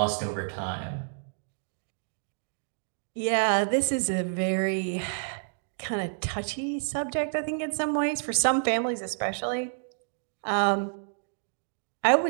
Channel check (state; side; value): silent; left; digital silence